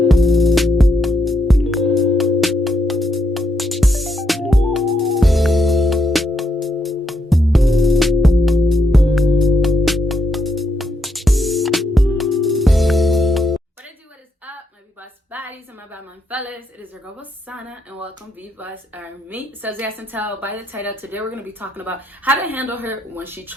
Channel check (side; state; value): both; normal; correlation 0.78